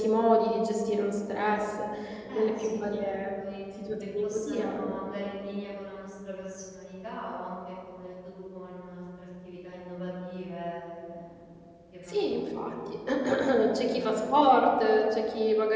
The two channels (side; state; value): both; identical; correlation 1.00